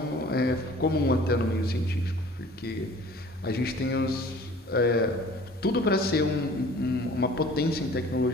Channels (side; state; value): both; normal; correlation 0.48